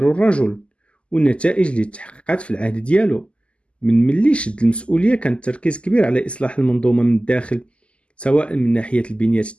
الرجل والنتائج اللي تحققت في العهد ديالو. من ملي شد المسؤولية كان التركيز كبير على إصلاح المنظومة من الداخل، سواء من ناحية البنية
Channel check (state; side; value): late; right; 0.054 ms